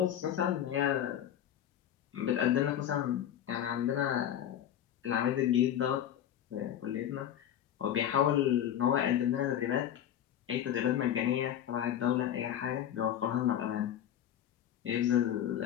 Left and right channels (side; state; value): right; quieter; 10.5 dB